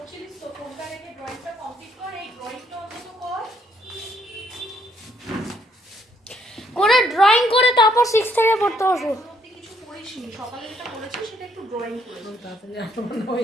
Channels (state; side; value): normal; both; correlation 0.69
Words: তো, ফোনটা রেখে ড্রয়িংটা কমপ্লিট কর, এই ড্রয়িংটা অন্তত কর করে ড্রয়িং করে তারপর 6 থেকে পড়তে বসো। কিছু করিসনি, সকালে যেটা করেছিস সেটা একটু ড্রয়িং করে তাড়াতাড়ি মনে